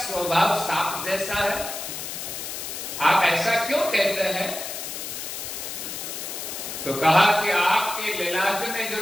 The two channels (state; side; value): noise; left; hiss, 7 dB below the sound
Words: सांप जैसा है, आप ऐसा क्यों कहते हैं? तो कहा कि आपके ललाट में